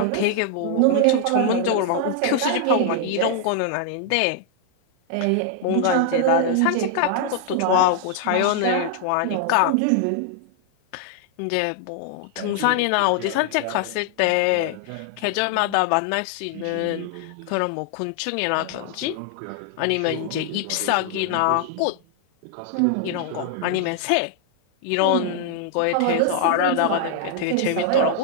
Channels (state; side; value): different; both; correlation 0.00